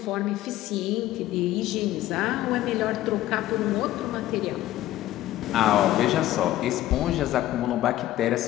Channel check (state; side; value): quieter; right; 14.6 dB